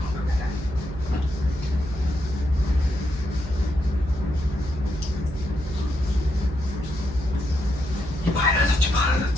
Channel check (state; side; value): noise; right; hum, 10 dB below the sound